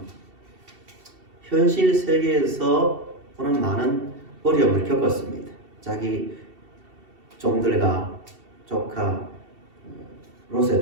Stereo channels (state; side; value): late; left; 2.7 ms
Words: 현실 세계에서 보는 많은 어려움을 겪었습니다. 자기 종들과 조카 롯의